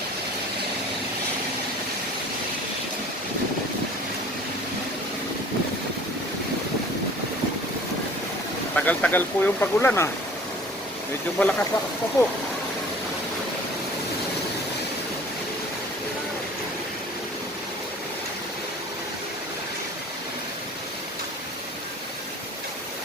Tagal-tagal po yung pagulan ah. Medyo malakas-lakas pa po.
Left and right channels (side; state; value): both; normal; correlation 0.47